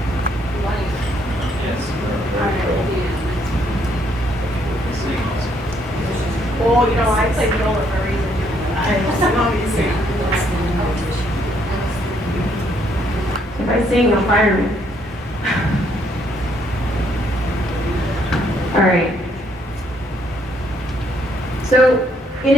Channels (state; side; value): normal; both; correlation 0.70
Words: Yes. Oh, you know, I play viola for a reason. I'm always singing. If I sing, you'll fire me. All right. So, in